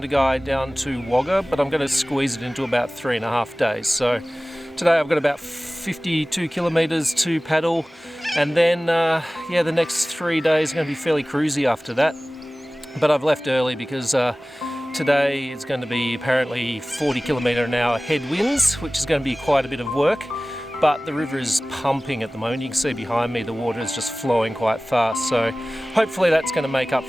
down to Wagga, but I'm going to squeeze it into about 3.5 days. So today I've got about 52 kilometres to paddle, and then the next 3 days are going to be fairly cruisy after that. But I've left early because today it's going to be apparently 40 km/h headwinds, which is going to be quite a bit of work, but the river is pumping at the moment. You can see behind me the water is just flowing quite fast, so hopefully that's going to make up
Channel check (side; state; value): both; normal; correlation 0.98